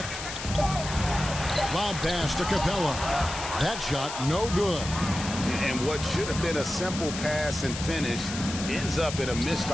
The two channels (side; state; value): left; noise; hiss, 8 dB below the sound